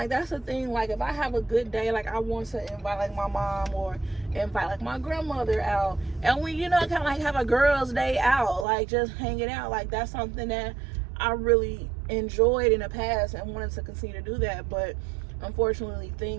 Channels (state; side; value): drops out; left; at 8.7 s